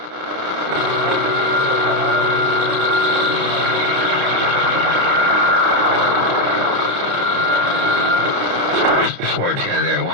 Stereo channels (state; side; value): late; left; 31 ms